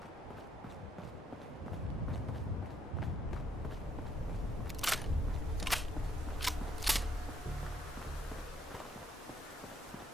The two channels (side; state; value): both; normal; correlation 0.71